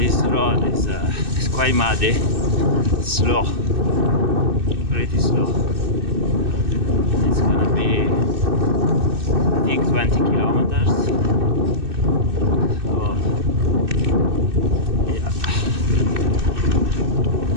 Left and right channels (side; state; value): left; late; 2.6 ms